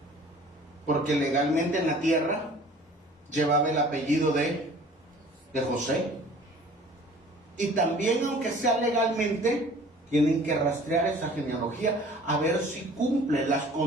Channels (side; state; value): both; normal; correlation 0.49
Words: Porque legalmente en la tierra llevaba el apellido de José. Y también, aunque sea legalmente, tienen que rastrear esa genealogía a ver si cumple las